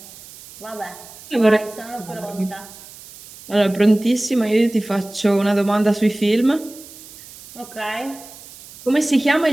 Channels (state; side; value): noise; right; hiss, 18 dB below the sound